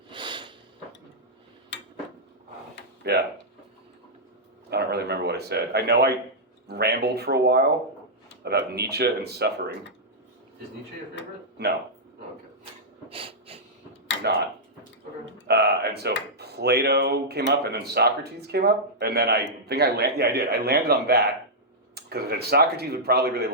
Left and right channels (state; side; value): normal; both; correlation -0.09